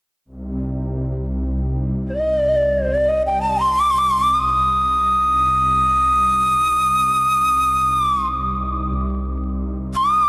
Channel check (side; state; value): both; identical; correlation 1.00